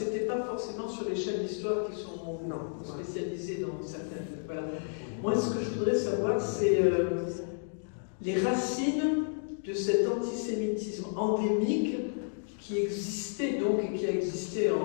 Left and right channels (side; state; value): right; silent; digital silence